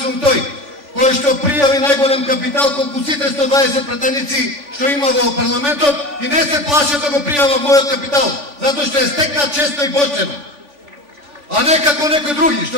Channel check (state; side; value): late; left; 3.5 ms